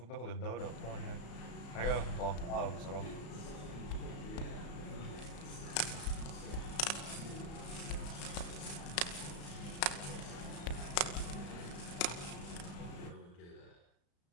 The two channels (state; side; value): late; right; 34 ms